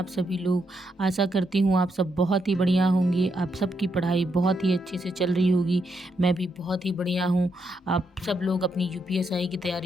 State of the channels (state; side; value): normal; both; correlation 0.79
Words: सभी लोग। आशा करती हूँ आप सब बहुत ही बढ़िया होंगे। आप सबकी पढ़ाई बहुत ही अच्छे से चल रही होगी। मैं भी बहुत ही बढ़िया हूँ। आप सब लोग अपनी यूपीएसआई की